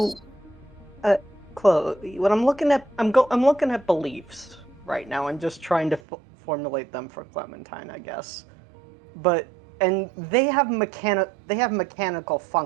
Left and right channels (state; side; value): drops out; left; at 6.0 s